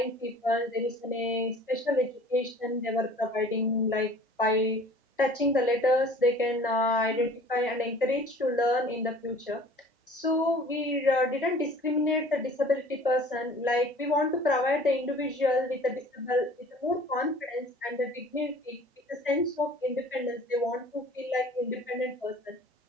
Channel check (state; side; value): normal; both; correlation 0.48